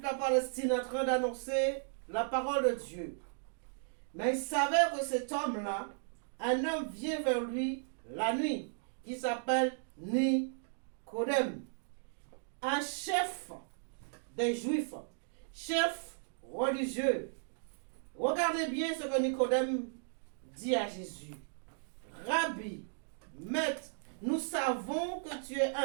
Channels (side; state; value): left; silent; digital silence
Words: la Palestine en train d'annoncer la parole de Dieu. Mais il savait que cet homme-là, un homme vient vers lui la nuit, qui s'appelle Nicodème, un chef des Juifs, chef religieux. Regardez bien ce que Nicodème dit à Jésus. Rabbi, maître, nous savons que tu es